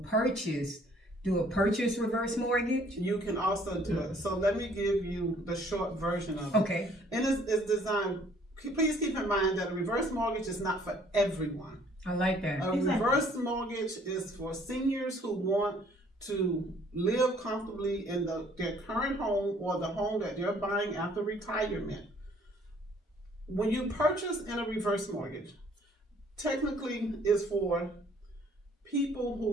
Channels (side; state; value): both; normal; correlation 0.59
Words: do a purchase reverse mortgage. You can also do it. So let me give you the short version of it. Okay. And it's designed, please keep in mind that a reverse mortgage is not for everyone. I like that. A reverse mortgage is for seniors who want to live comfortably in their current home, or the home that they're buying after retirement. When you purchase in a reverse mortgage, technically is for people